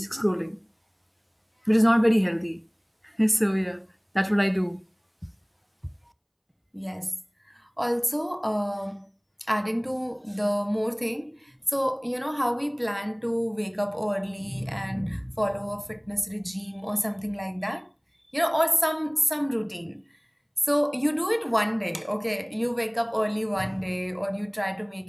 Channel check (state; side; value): identical; both; correlation 1.00